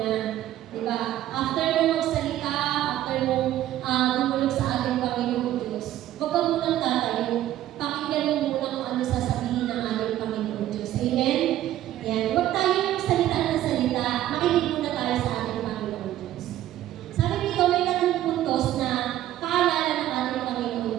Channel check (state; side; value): quieter; left; 13.2 dB